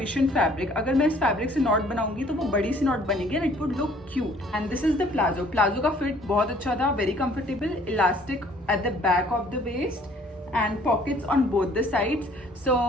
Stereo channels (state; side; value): normal; both; correlation 0.57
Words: fabric, अगर मैं इस फैब्रिक से नॉट बनाऊंगी तो वो बड़ी सी नॉट बनेगी and it would look cute. And this is the palazzo. Palazzo का फिट बहुत अच्छा था, very comfortable, elastic at the back of the waist and pockets on both the sides. So